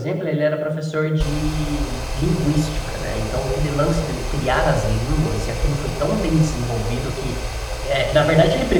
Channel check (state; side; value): identical; both; correlation 1.00